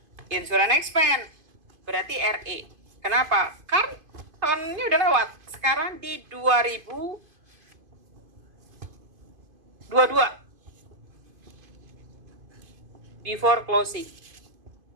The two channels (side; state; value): left; late; 2.5 ms